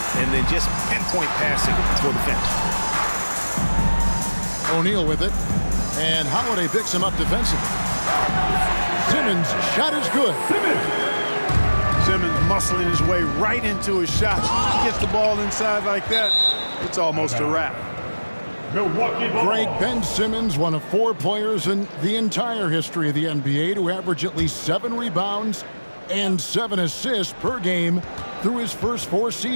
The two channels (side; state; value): both; inverted; correlation -1.00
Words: and then just pinpoint passing for the finish. O'Neal with it. And Holiday picks him up defensively. Simmons' shot is good. Simmons muscling his way right into his shot. He gets the ball inside like that, it's almost a wrap. Milwaukee ball. Greg Ben Simmons, one of 4 players in the entire history of the NBA to average at least 7 rebounds and 7 assists per game through his first 4